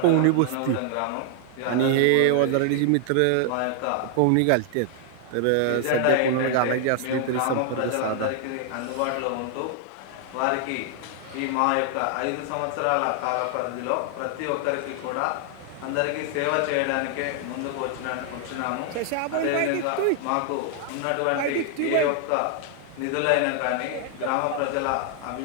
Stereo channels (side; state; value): both; different; correlation 0.00